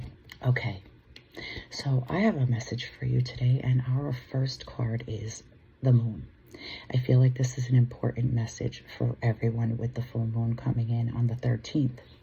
Okay, so I have a message for you today, and our first card is the moon. I feel like this is an important message for everyone with the full moon coming in on the 13th,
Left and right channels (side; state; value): both; identical; correlation 1.00